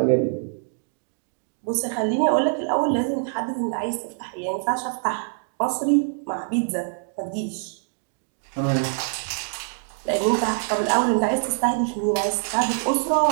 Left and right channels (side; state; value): left; silent; digital silence